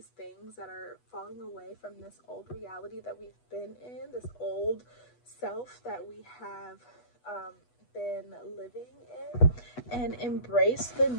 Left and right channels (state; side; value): late; right; 8.2 ms